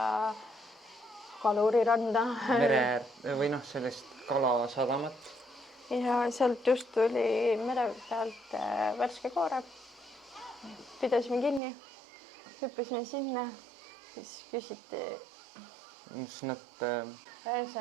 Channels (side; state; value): left; drops out; at 11.6 s